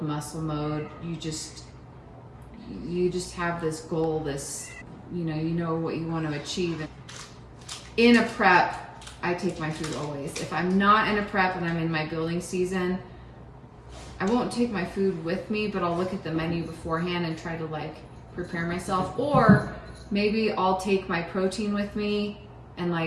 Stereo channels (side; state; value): both; identical; correlation 1.00